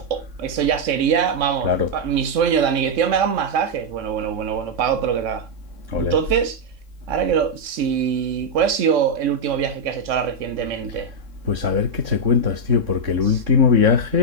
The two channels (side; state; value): left; late; 3.6 ms